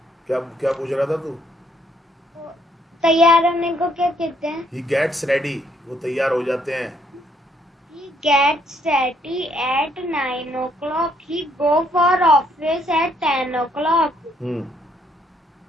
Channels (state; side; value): normal; both; correlation 0.70